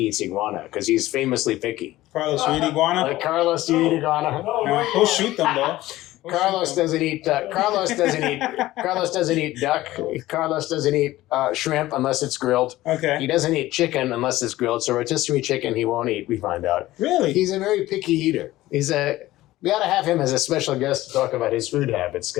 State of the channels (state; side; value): quieter; right; 16.5 dB